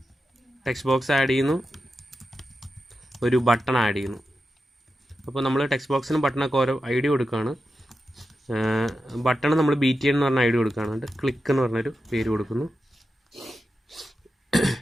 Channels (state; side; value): normal; both; correlation 0.90